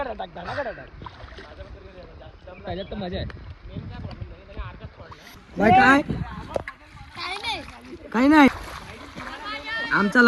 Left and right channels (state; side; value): identical; both; correlation 1.00